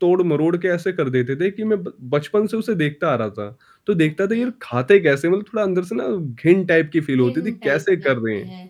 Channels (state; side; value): identical; both; correlation 1.00